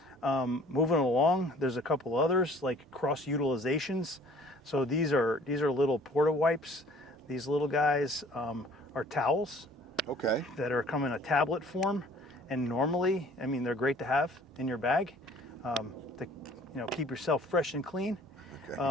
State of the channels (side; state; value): both; normal; correlation 0.54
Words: Moving along, there's a couple others like cross utilizations. So these are little porta wipes. These little guys are towels Okay. that are come in a tablet form, and normally, I mean, they're great to have in your bag to keep yourself fresh and clean.